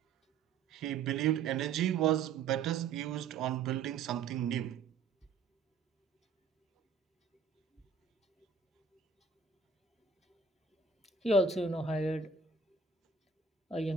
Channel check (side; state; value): left; quieter; 5.2 dB